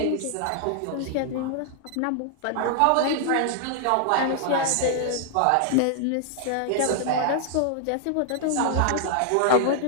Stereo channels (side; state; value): both; different; correlation -0.01